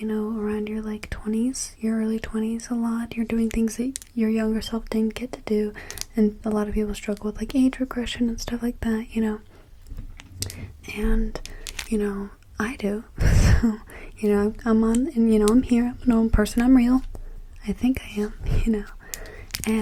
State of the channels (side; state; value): both; identical; correlation 1.00